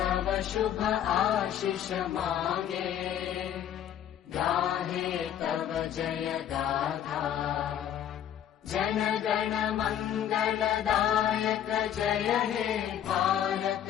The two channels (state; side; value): quieter; right; 10.1 dB